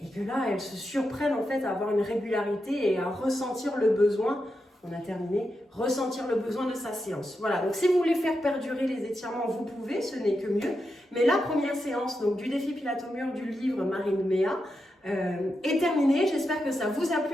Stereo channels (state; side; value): normal; both; correlation 0.87